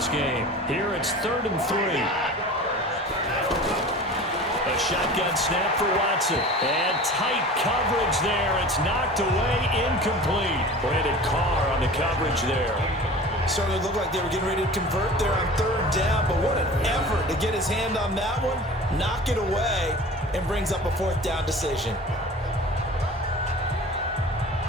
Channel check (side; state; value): both; normal; correlation 0.39